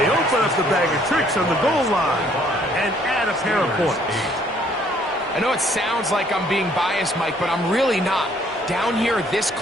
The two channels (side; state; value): both; normal; correlation 0.63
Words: open up the bag of tricks on the goal line and add a pair of points. I know it sounds like I'm being biased, Mike, but I'm really not. Down here this